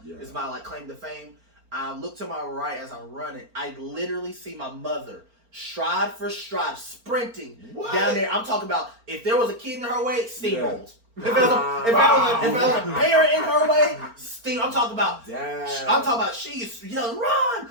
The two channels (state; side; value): late; left; 4.4 ms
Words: is my like claim to fame. I look to my right as I'm running. I literally see my mother stride for stride sprinting down there. I'm talking about if there was a kid in her way, steamrolls. If there was a parent in her way, I'm talking about she's yelling, run.